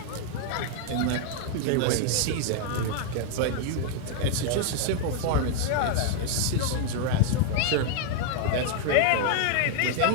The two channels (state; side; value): different; both; correlation 0.00